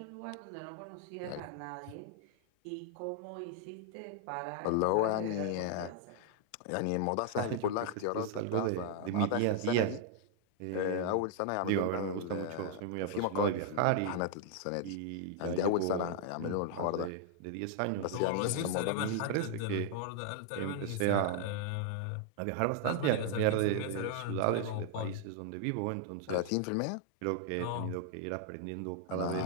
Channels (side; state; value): both; different; correlation -0.01